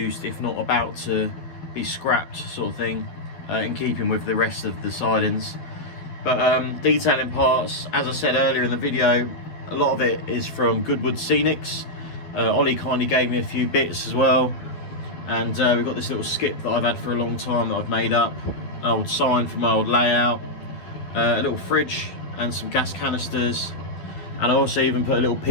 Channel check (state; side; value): late; right; 12 ms